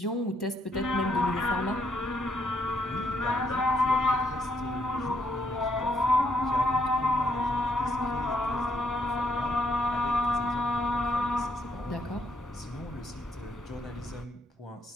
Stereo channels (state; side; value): normal; both; correlation 0.73